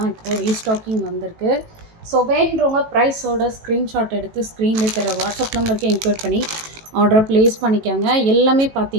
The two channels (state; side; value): late; left; 18 ms